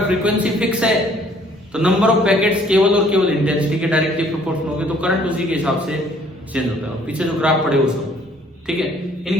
फ्रीक्वेंसी फिक्स है तो नंबर ऑफ पैकेट्स केवल और केवल इंटेंसिटी के डायरेक्टली प्रोपोर्शनल होंगे, तो करंट उसी के हिसाब से चेंज होता है। पीछे जो ग्राफ पड़े वो सब ठीक है,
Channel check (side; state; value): both; normal; correlation 0.60